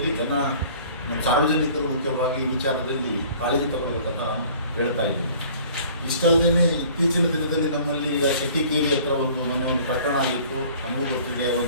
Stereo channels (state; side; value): inverted; both; correlation -0.50